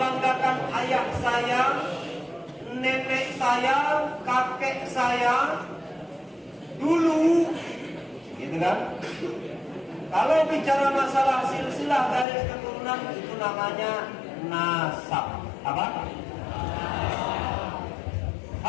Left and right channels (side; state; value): right; drops out; at 12.2 s